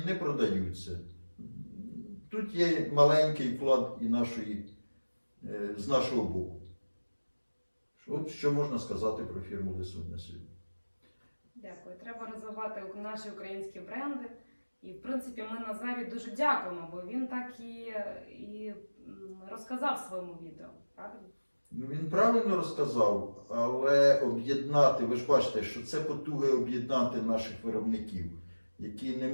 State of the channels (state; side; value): inverted; both; correlation -1.00